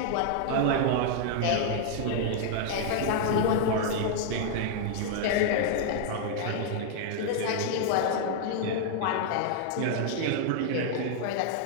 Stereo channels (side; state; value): both; different; correlation -0.01